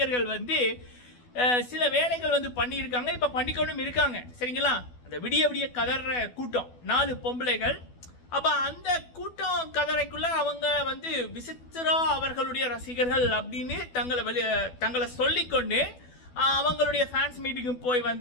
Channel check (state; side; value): late; right; 12 ms